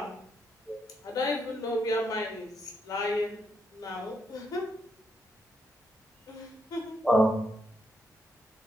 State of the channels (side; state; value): both; normal; correlation 0.78